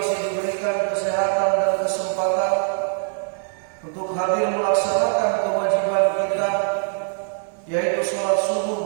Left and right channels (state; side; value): silent; left; digital silence